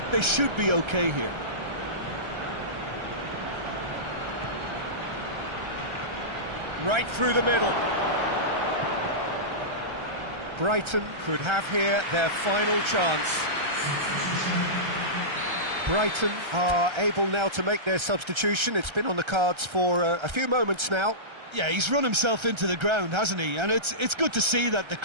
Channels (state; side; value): late; left; 1.3 ms